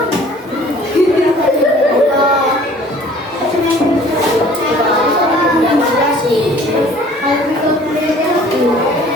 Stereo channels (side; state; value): both; normal; correlation 0.52